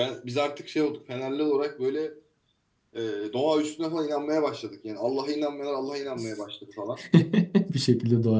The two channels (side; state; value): both; identical; correlation 1.00